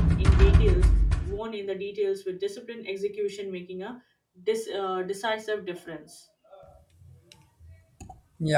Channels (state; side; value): identical; both; correlation 1.00